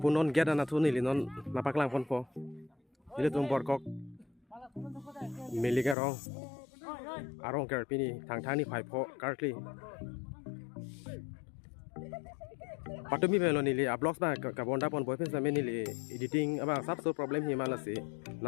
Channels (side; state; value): right; drops out; at 6.0 s